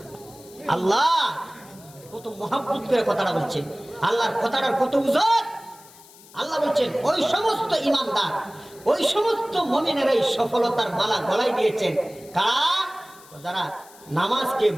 আল্লাহ কত মহব্বত করে কথাটা বলছেন, আল্লাহর কথাটার কত ওজন। আল্লাহ বলছেন ওই সমস্ত ঈমানদার, ওই সমস্ত মুমিনেরাই সফলতার মালা গলায় দিয়েছেন। কারা? যারা নামাজকে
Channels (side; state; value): left; noise; hiss, 23 dB below the sound